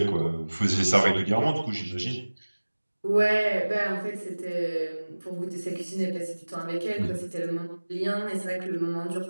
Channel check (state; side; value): inverted; both; correlation -1.00